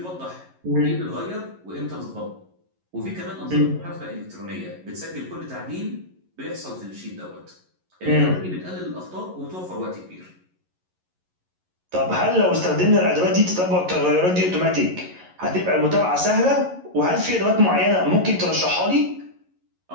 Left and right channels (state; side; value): late; left; 11 ms